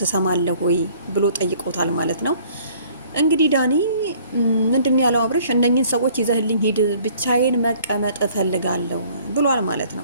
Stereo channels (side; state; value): both; inverted; correlation -0.57